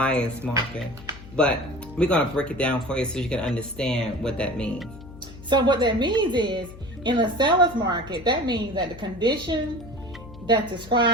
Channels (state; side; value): noise; left; hum, 17 dB below the sound